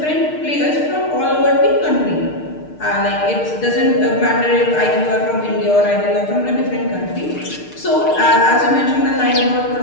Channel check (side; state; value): right; late; 6.6 ms